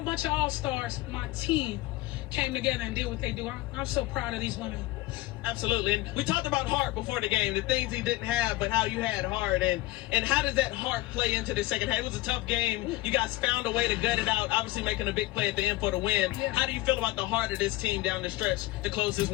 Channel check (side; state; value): right; quieter; 18.4 dB